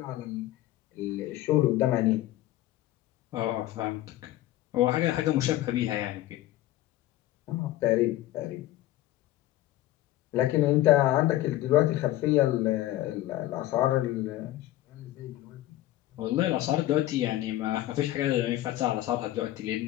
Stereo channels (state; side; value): quieter; right; 15.1 dB